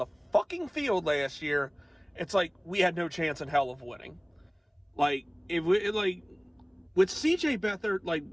fucking field last year. It's like we had no chance in hell of winning. Like, with CJ Beathard, like,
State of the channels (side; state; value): both; identical; correlation 1.00